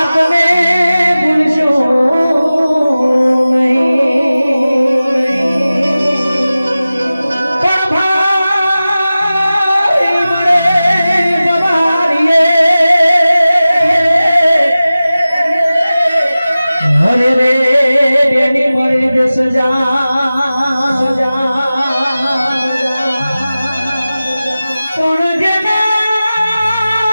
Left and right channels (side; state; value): both; inverted; correlation -0.96